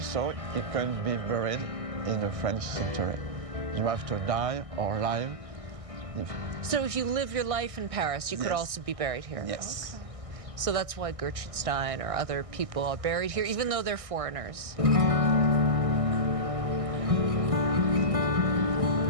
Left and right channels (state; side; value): late; left; 1.6 ms